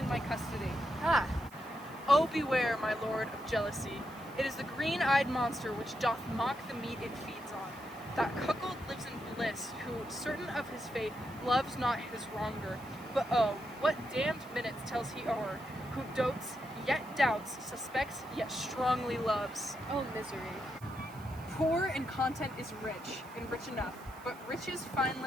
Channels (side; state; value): right; noise; hiss, 23 dB below the sound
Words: my custody. Ah, Oh, beware, my lord, of jealousy. It is the green-eyed monster which doth mock the meat it feeds on. That cuckold lives in bliss, who, certain of his fate, loves not his wronger. But oh, what damned minutes tells he o'er, who dotes, yet doubts, suspects, yet strongly loves. oh misery. Poor in content is rich, and rich enough, but riches